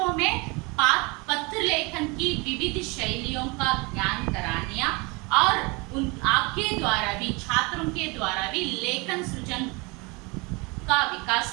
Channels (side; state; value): left; quieter; 27.7 dB